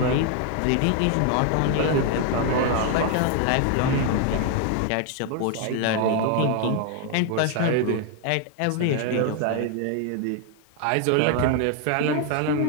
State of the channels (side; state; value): both; different; correlation 0.00